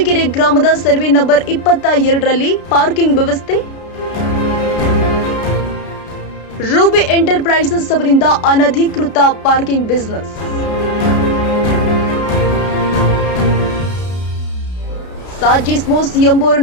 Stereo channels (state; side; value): late; right; 33 ms